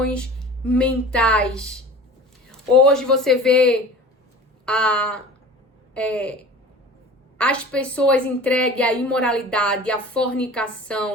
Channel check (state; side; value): normal; both; correlation 0.40